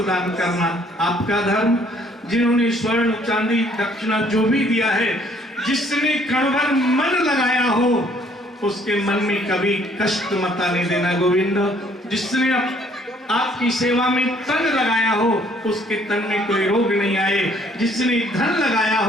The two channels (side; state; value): both; normal; correlation 0.62